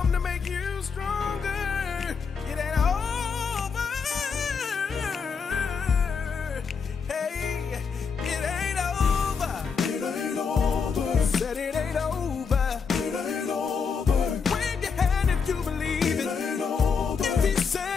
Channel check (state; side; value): quieter; right; 5.8 dB